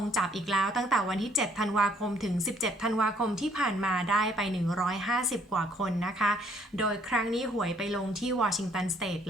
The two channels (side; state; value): both; normal; correlation 0.64